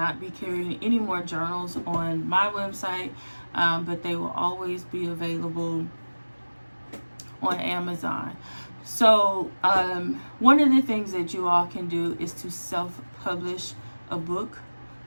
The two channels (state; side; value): inverted; both; correlation -1.00